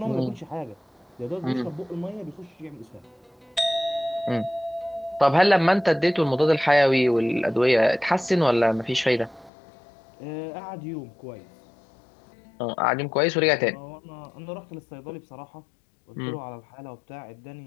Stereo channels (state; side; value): drops out; right; at 9.5 s